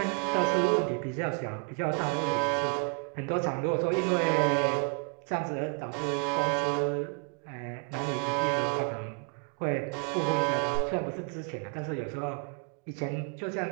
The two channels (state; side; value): quieter; left; 38.3 dB